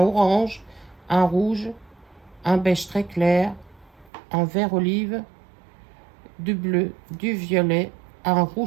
orange, un rouge, un beige très clair, un vert olive, du bleu, du violet, un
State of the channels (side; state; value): left; drops out; at 4.1 s